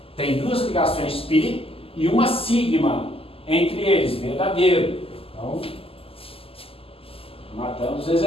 tem 2 ligações π e uma sigma entre eles, verdadeiro. Então, matamos o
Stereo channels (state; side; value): late; right; 0.27 ms